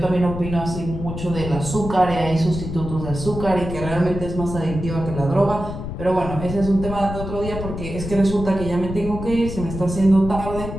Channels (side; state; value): left; noise; rumble, 7 dB below the sound